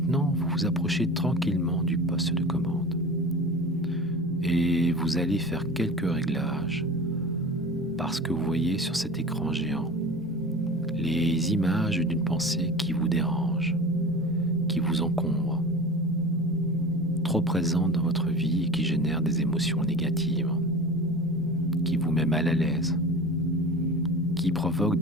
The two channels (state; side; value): normal; both; correlation 0.35